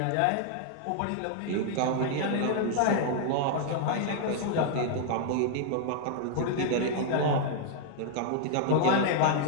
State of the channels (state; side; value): different; both; correlation -0.01